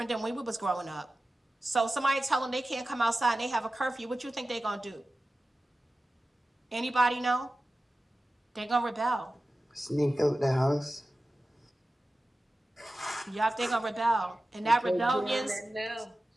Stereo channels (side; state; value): both; normal; correlation 0.95